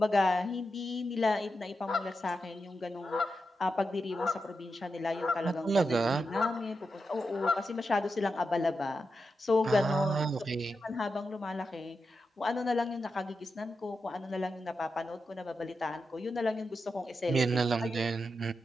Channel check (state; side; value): normal; both; correlation 0.88